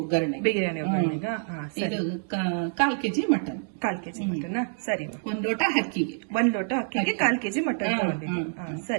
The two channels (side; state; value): left; silent; digital silence